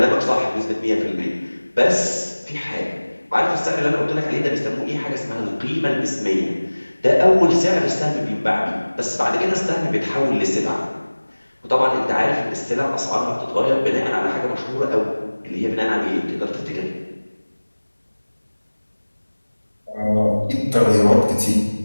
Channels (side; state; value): both; inverted; correlation -1.00